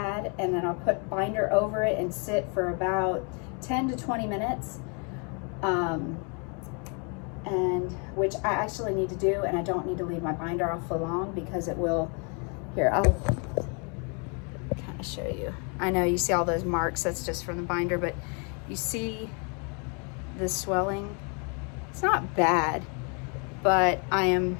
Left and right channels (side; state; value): right; quieter; 36.2 dB